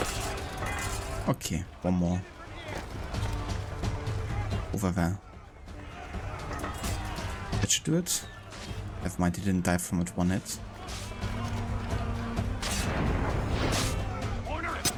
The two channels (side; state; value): both; identical; correlation 1.00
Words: Okay, one more. Over there. That should do it. Never mind, he didn't die from it one hit.